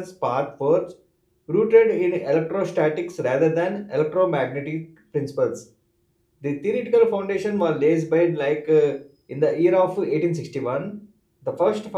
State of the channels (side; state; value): both; identical; correlation 1.00